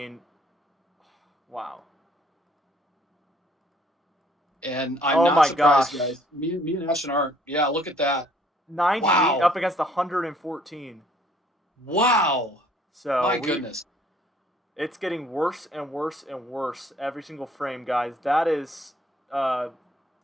wow. And I'm not surprised, guys. Me and Ashton aren't. Yeah, look at that. 98 up against 114. Wow. So my goodness. It's getting worse and worse and worse every single frame, guys. That is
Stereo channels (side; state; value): both; normal; correlation 0.61